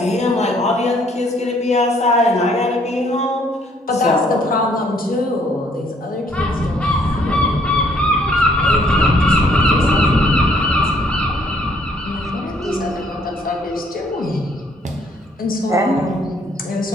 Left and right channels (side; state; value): both; normal; correlation 0.64